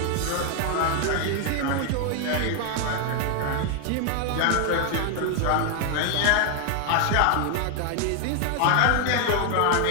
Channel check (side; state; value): both; different; correlation 0.00